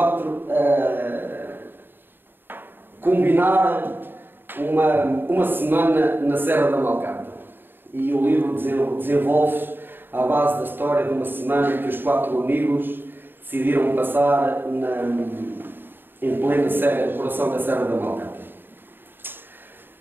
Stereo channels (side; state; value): left; late; 0.097 ms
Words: combinar uma semana na Serra da Malcata. E o livro desenvolve-se à base da história de uma semana em que os 4 amigos decidiram passar em plena serra, coração da Serra da Malcata.